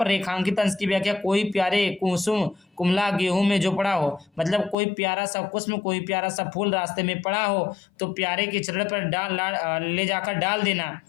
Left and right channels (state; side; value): drops out; right; at 4.8 s